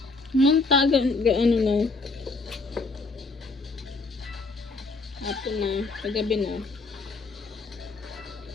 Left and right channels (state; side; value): quieter; right; 3.6 dB